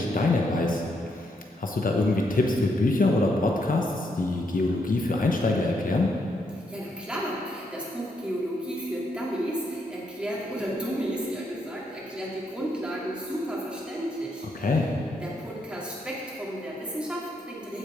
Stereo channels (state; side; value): normal; both; correlation 0.77